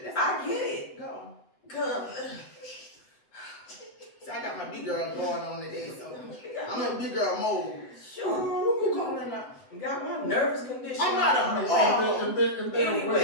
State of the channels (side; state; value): right; late; 8.0 ms